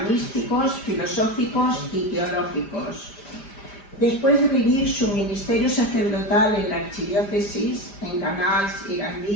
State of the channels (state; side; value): late; right; 5.0 ms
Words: filosóficos y teológicos. Después de vivir su ministerio sacerdotal en la archidiócesis, en Canals y